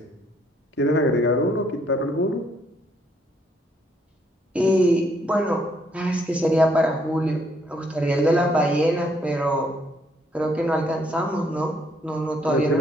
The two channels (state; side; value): normal; both; correlation 0.69